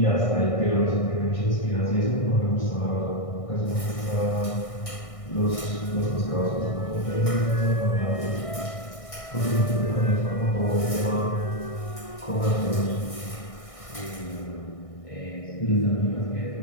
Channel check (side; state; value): right; late; 1.6 ms